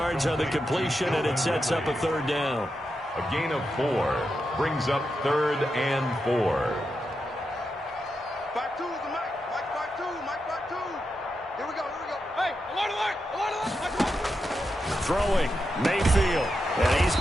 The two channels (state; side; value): normal; both; correlation 0.87